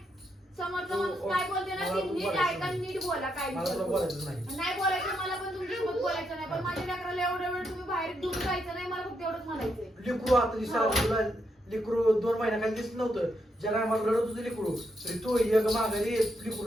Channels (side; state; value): both; normal; correlation 0.80